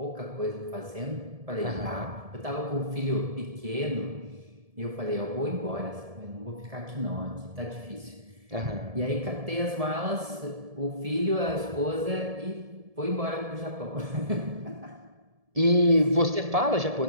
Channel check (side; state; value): left; late; 1.7 ms